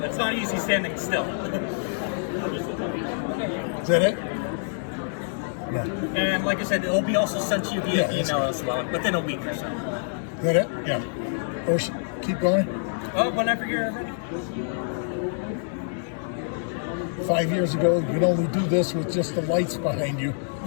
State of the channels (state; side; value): silent; right; 61 dB below the other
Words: It's not easy standing still. Is that it? No. And like I said, it'll be also sent to you via Yeah, email as well within a week or so. Is that it? Yeah. Or keep going. Oh, whenever you're ready. 5 years ago, you could only do this with just the lights behind you.